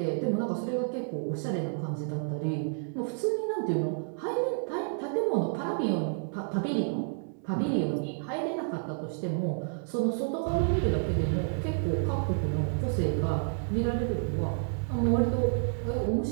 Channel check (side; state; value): left; silent; digital silence